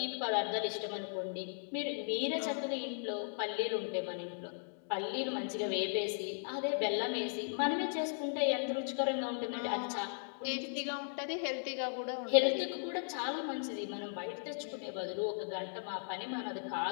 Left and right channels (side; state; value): right; silent; digital silence